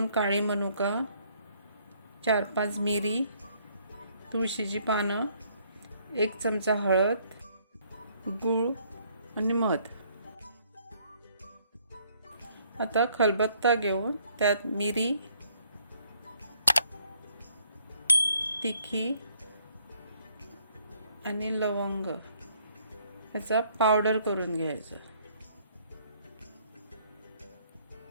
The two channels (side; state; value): both; inverted; correlation -0.66